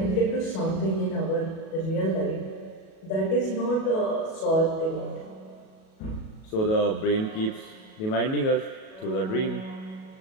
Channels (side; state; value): right; late; 37 ms